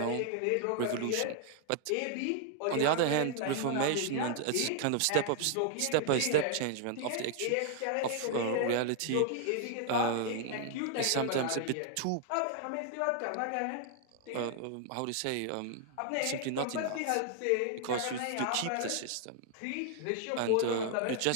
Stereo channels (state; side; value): different; both; correlation 0.00